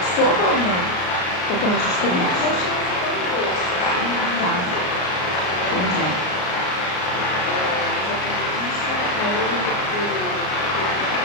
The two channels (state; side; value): late; right; 33 ms